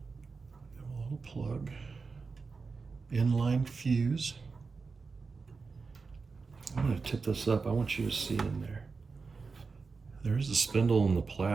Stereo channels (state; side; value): quieter; left; 4.6 dB